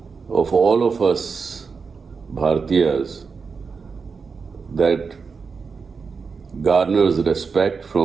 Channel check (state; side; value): quieter; left; 5.2 dB